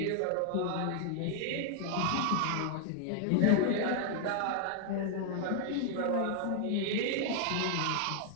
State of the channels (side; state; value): both; different; correlation 0.00